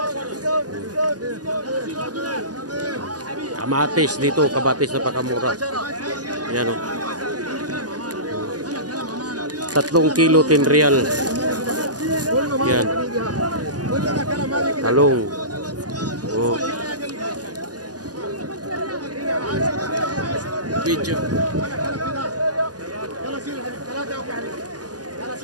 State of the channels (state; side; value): late; left; 0.68 ms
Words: Kamatis dito, kabatis na pakamura. Yan o. 3 kilo 10 real. Yan. Talong. Video.